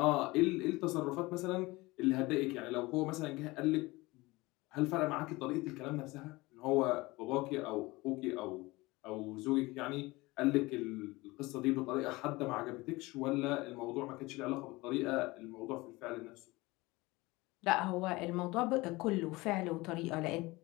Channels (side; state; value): right; quieter; 21.7 dB